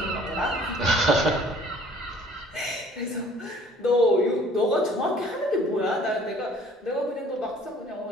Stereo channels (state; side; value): normal; both; correlation 0.54